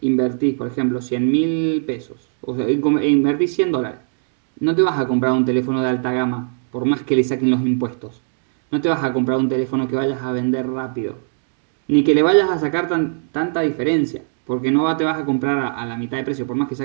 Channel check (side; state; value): left; silent; digital silence